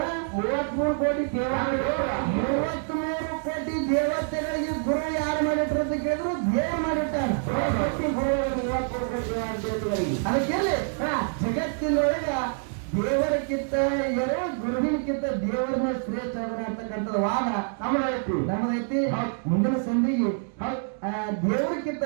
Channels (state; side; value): silent; left; 61 dB below the other